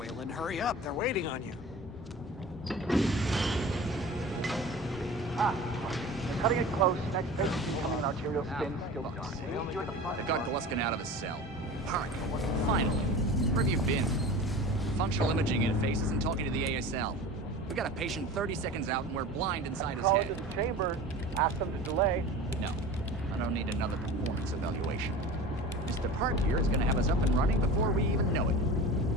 hurry up. They're waiting on you. They're cutting it close. Next patient's becoming an arterial stent. Still dark. You're at the front. They've got Gluskin out of his cell. Park, finally. Where have you been? Functional imaging interfaces and talking to the ASL. We got a patient 30 seconds out and we're blind inside his Call head. into the chamber. Ask them to delay. No, I don't need another performance evaluation. Mr. Park here is gonna have us up and running before we even know it.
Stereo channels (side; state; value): both; normal; correlation 0.36